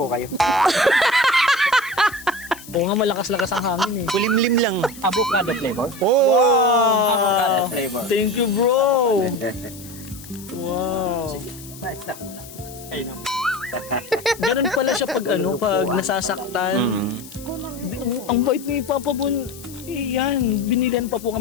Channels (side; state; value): left; noise; hiss, 17 dB below the sound